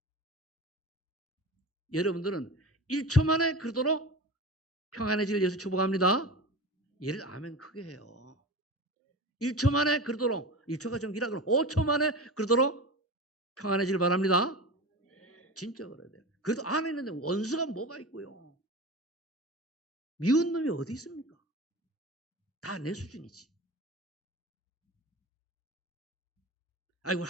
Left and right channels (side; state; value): both; normal; correlation 0.30